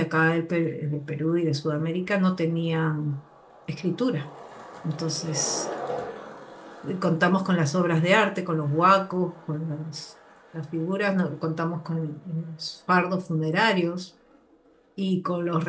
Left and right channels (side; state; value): both; identical; correlation 1.00